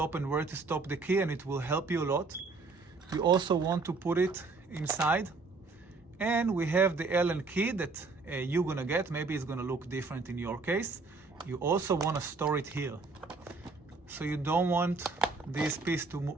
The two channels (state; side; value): quieter; left; 4.0 dB